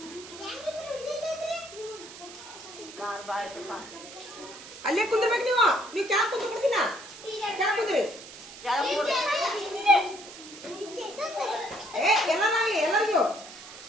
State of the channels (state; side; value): noise; right; hiss, 15 dB below the sound